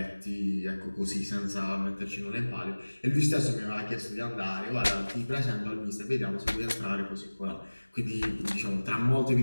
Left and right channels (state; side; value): inverted; both; correlation -1.00